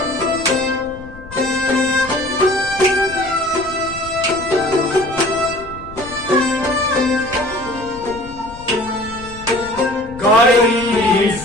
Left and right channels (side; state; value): left; noise; rumble, 17 dB below the sound